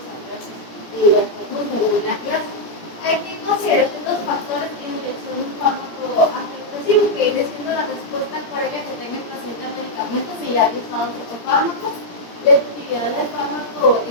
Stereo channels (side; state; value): right; late; 17 ms